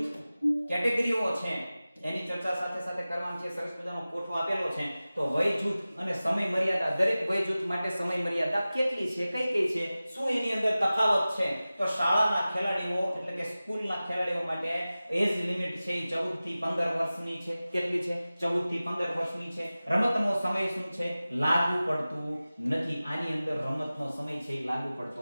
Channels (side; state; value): both; inverted; correlation -0.97